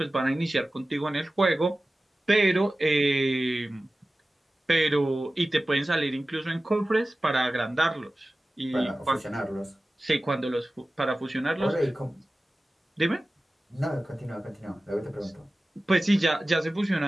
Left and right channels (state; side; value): normal; both; correlation 0.96